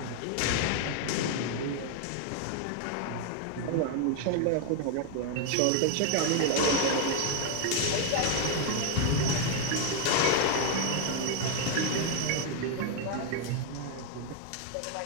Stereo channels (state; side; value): different; both; correlation 0.01